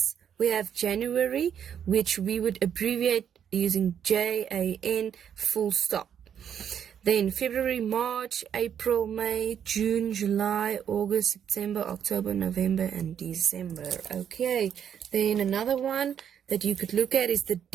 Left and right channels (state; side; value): quieter; left; 8.7 dB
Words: we have January, which we would abbreviate using JAN full stop. Then February, March, April, May, June, July, August, September, October, November, and December. Okay, then another one that you could look at is the